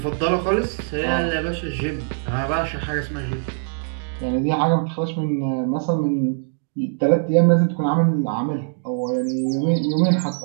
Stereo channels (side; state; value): left; silent; digital silence